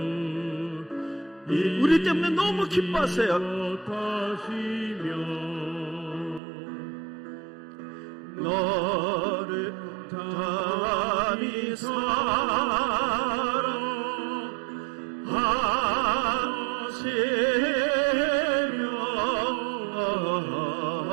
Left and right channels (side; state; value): left; drops out; at 6.4 s